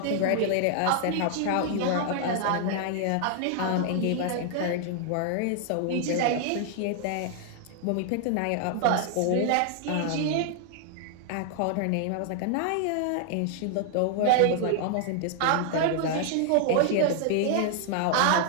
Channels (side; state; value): both; different; correlation 0.00